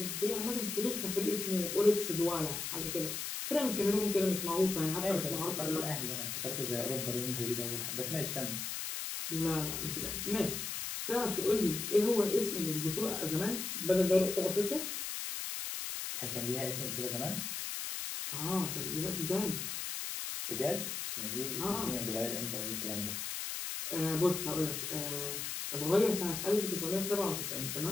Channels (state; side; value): noise; left; hiss, 4 dB below the sound